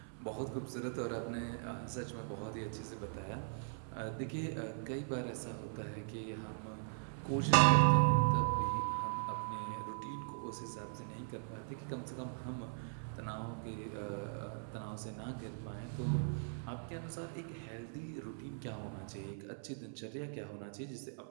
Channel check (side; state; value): left; silent; 51 dB below the other